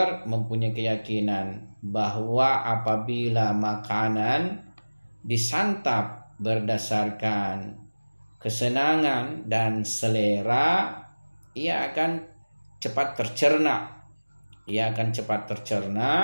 mempunyai keyakinan bahwa apabila makanan disantap berdasarkan kesenangan dan selera, ia akan cepat tercerna.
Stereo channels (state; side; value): inverted; both; correlation -1.00